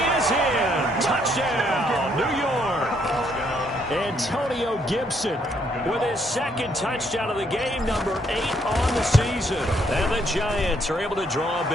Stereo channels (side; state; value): both; normal; correlation 0.71